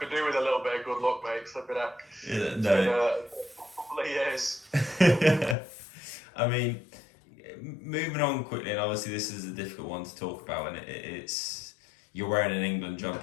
do with a little bit of good luck, mate. Flipping out. Yeah, no. A couple of years. I mean, moving on quickly, and obviously this is a difficult one to talk about, and it's you're wearing an England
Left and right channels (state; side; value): drops out; right; at 5.6 s